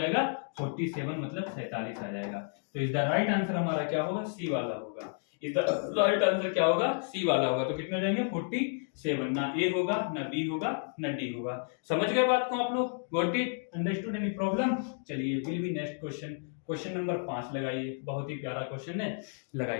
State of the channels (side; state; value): right; silent; 57 dB below the other